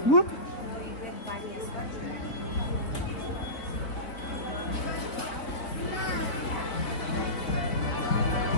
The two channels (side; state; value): right; late; 3.8 ms